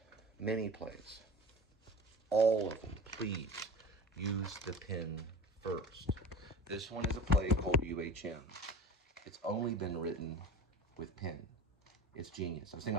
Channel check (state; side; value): normal; both; correlation 0.36